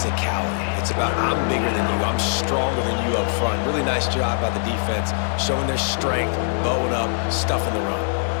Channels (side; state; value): right; silent; digital silence